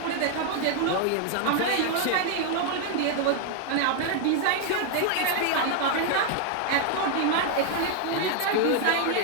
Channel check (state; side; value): different; both; correlation 0.00